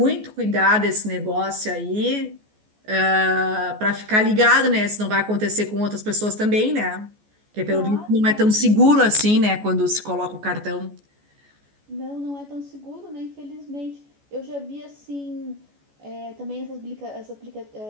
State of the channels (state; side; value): late; left; 14 ms